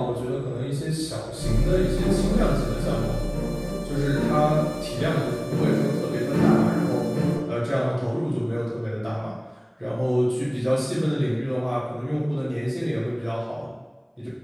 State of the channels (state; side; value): identical; both; correlation 1.00